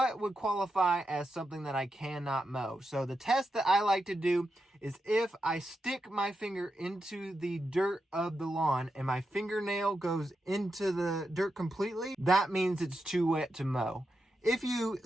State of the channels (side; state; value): both; normal; correlation 0.87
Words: would qualify as something that I cannot mow? So the test that I like to do is if I stick my finger into the dirt of the lawn and my fingernail goes into the dirt completely, that means it's too wet to mow. If you